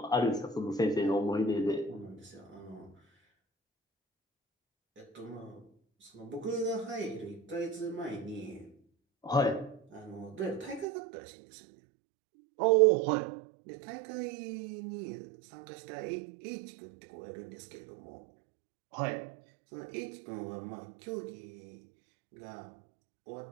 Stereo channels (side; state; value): left; drops out; at 10.9 s